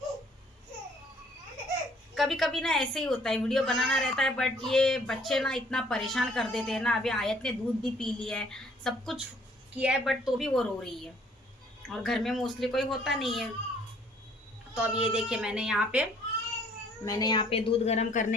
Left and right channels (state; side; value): normal; both; correlation 0.60